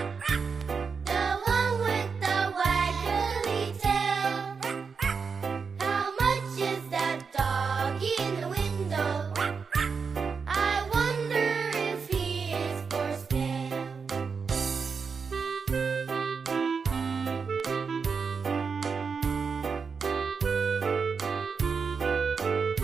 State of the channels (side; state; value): left; quieter; 5.5 dB